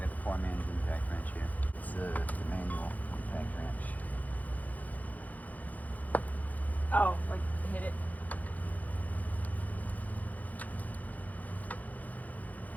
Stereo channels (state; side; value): late; right; 0.079 ms